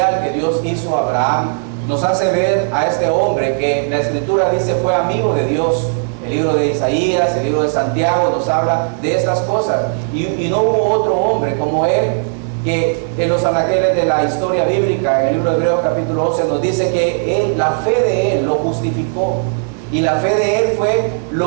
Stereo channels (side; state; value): left; silent; digital silence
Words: que Dios hizo a Abraham nos hace ver a este hombre que la Escritura dice fue amigo de Dios. El libro de Isaías, el libro de Santiago nos habla de estas cosas, y no hubo otro hombre como él, que en los anaqueles de la historia bíblica, en el libro de Hebreos capítulo 11 nos dice que la fe de él lo justificó, y la fe de él fue